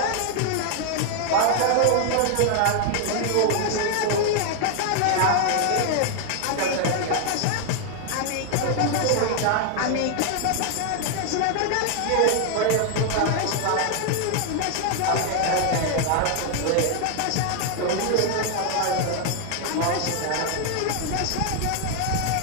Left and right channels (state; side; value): different; both; correlation 0.00